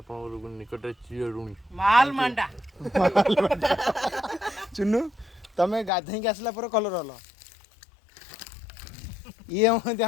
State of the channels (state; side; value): drops out; right; at 5.9 s